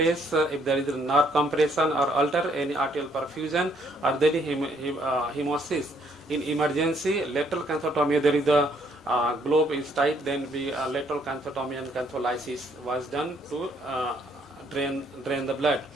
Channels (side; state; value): both; normal; correlation 0.67